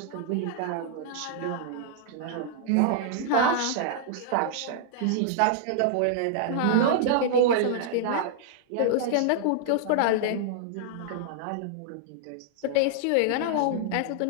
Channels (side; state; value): both; different; correlation -0.01